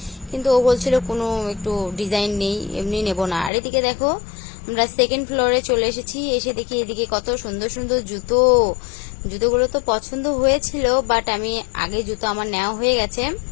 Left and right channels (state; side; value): drops out; right; at 3.5 s